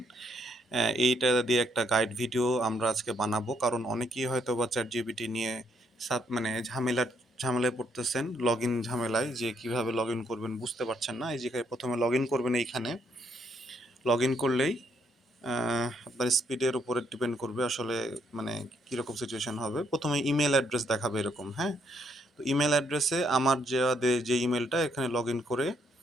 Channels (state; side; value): normal; both; correlation 0.73